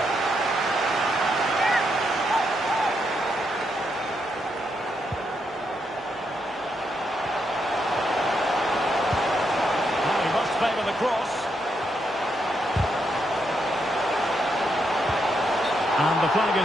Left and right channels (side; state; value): both; normal; correlation 0.80